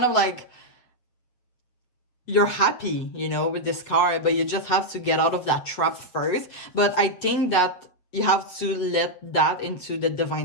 of like you're happy, with this card, but you just have to get out of that trap first. But I think that you have to let that into the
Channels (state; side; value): late; right; 8.1 ms